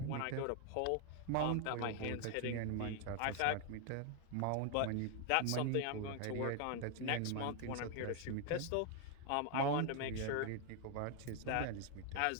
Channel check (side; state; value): both; different; correlation 0.00